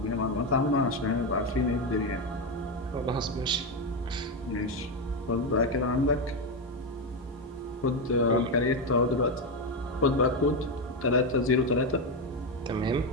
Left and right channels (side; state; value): both; normal; correlation 0.09